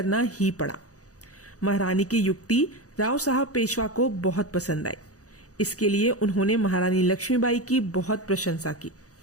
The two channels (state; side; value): late; right; 0.66 ms